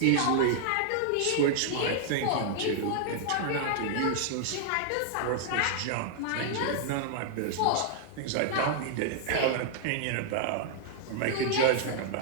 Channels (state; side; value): different; both; correlation -0.01